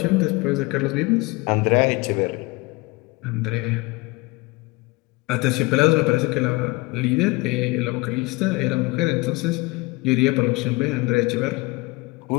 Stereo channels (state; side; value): quieter; right; 23.9 dB